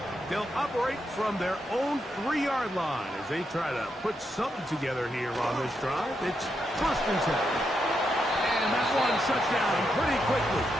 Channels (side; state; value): both; normal; correlation 0.83